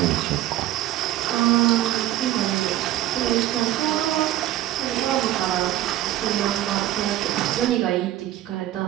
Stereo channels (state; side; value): quieter; left; 14.1 dB